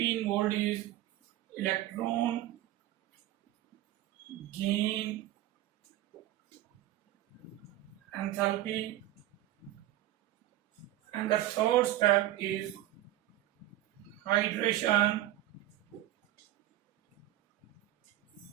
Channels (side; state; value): left; quieter; 14.5 dB